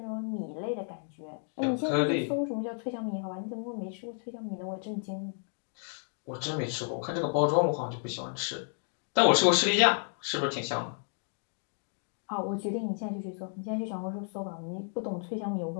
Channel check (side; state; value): right; silent; 56 dB below the other